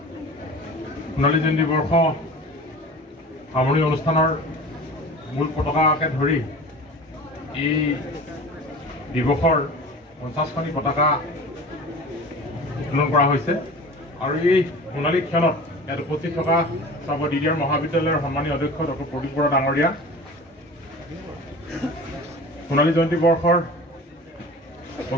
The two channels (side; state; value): both; normal; correlation 0.38